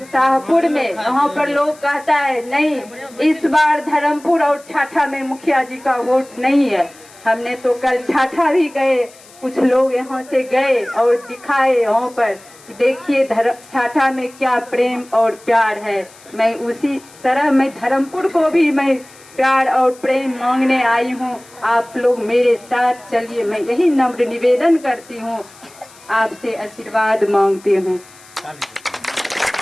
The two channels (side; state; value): left; noise; hiss, 24 dB below the sound